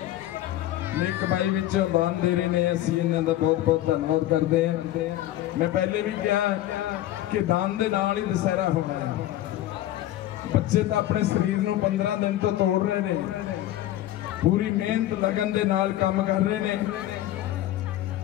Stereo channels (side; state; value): right; quieter; 13.9 dB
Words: नेक कमाई विचों दान दे रहे हैं, असीं इन्हां दा बहुत बहुत धन्नवाद करते हैं। मैं पहले भी कहा कि दान दे नाल ही दशहरा होना है। बच्चे तो अपने शरीर नूं 15 दिन तो तोड़ रहे हैं, पूरी मेहनत लगन दे नाल काम कर रहे हैं,